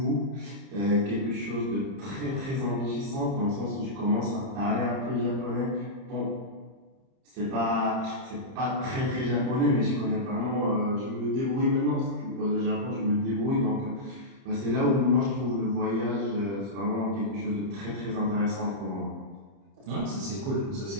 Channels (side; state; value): left; late; 30 ms